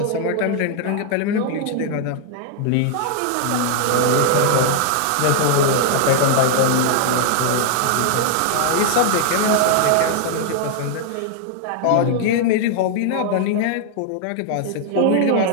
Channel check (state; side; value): different; both; correlation 0.00